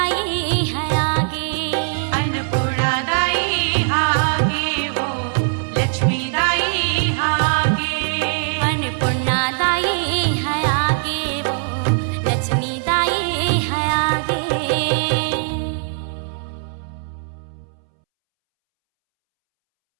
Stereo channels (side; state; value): left; silent; 65 dB below the other